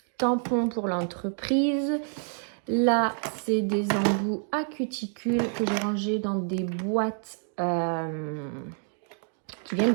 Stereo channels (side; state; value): left; silent; 59 dB below the other